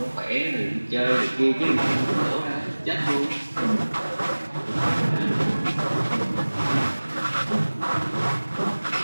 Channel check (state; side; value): inverted; both; correlation -1.00